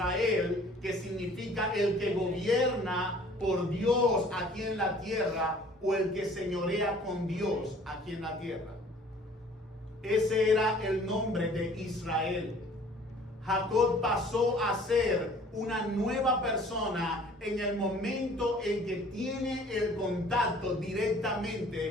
que significa el que gobierna por Dios aquí en la tierra, o el que señorea con Dios aquí en la tierra. Ese era el nombre de Israel. Jacob pasó a ser una nueva persona en el momento en que tiene el contacto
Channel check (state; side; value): normal; both; correlation 0.52